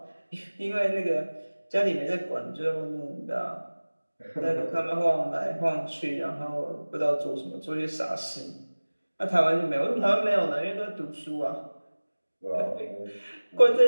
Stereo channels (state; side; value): inverted; both; correlation -1.00